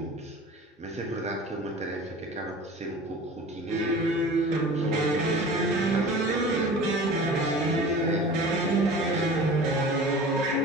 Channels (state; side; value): normal; both; correlation 0.40